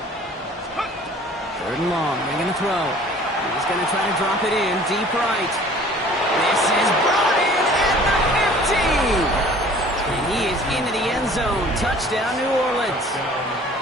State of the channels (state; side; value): normal; both; correlation 0.50